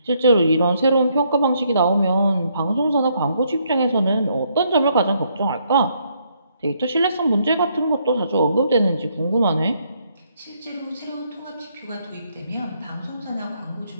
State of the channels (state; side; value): inverted; both; correlation -0.72